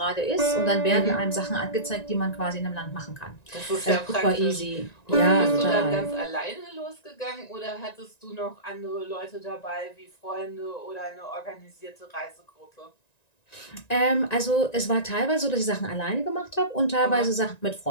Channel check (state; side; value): late; right; 1.9 ms